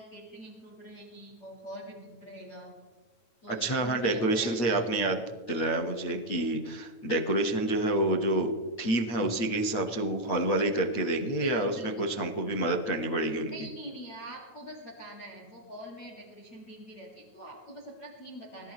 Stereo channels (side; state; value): right; late; 9.1 ms